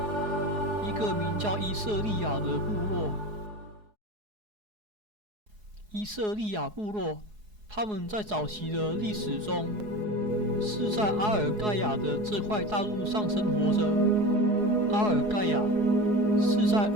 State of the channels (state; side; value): late; left; 4.8 ms